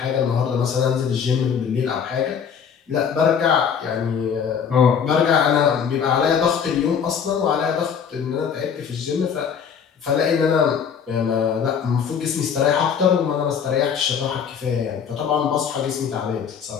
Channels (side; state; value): right; quieter; 7.2 dB